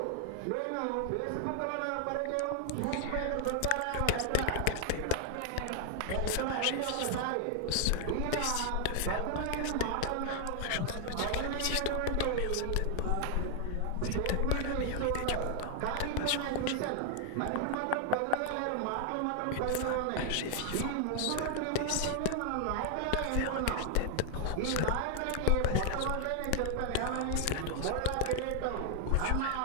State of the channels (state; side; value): different; both; correlation 0.00